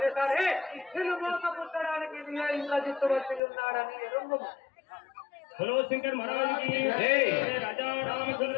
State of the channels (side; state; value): right; drops out; at 3.4 s